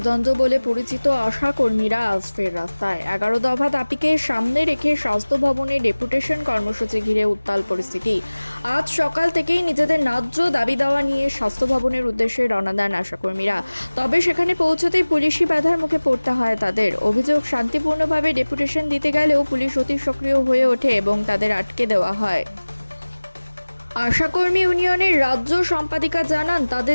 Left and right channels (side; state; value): both; inverted; correlation -1.00